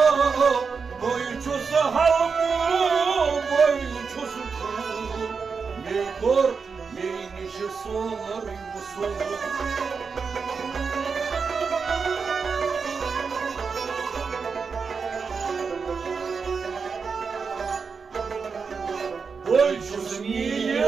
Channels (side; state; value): left; quieter; 5.3 dB